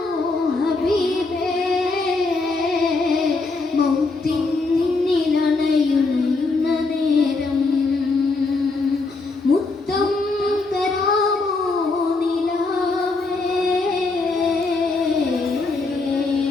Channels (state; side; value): quieter; right; 3.7 dB